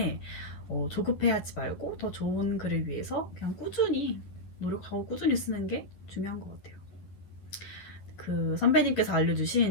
조급해하지 말고 더 좋은 글을 위해서 그냥 꾸준히 노력하고 꾸준히 쓰는 게 중요한 것 같아요. 그 선배님께서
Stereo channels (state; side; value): late; right; 11 ms